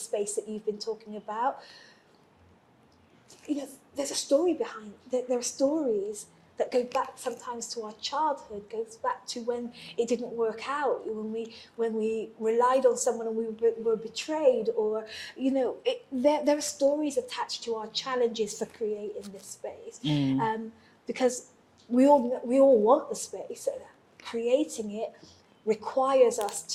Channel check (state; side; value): identical; both; correlation 1.00